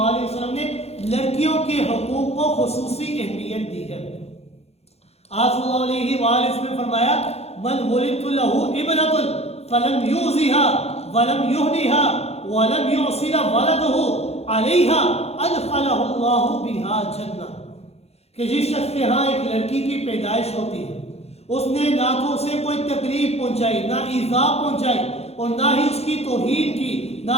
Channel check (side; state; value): right; late; 0.30 ms